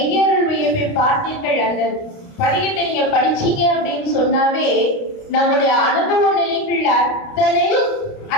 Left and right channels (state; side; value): late; right; 29 ms